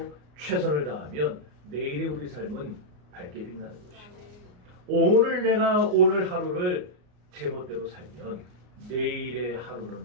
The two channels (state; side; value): late; left; 33 ms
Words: 최선을 다하면 내일의 우리 삶은 밝게 빛나는 것이고, 오늘 내가 오늘 하루를 제멋대로 살면 내일의 하루는